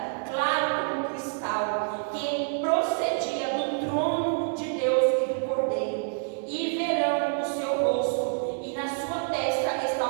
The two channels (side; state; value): left; silent; 60 dB below the other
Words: claro como cristal, que procedia do trono de Deus e do Cordeiro. E verão o seu rosto, e na sua testa